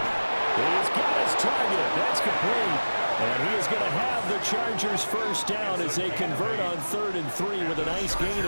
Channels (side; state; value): both; inverted; correlation -1.00